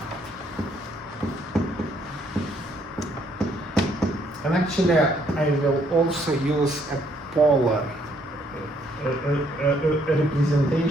And actually, I will also use a polar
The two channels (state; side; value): normal; both; correlation 0.68